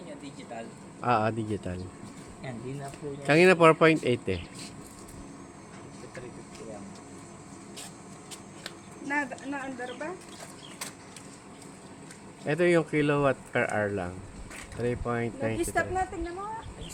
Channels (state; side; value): identical; both; correlation 1.00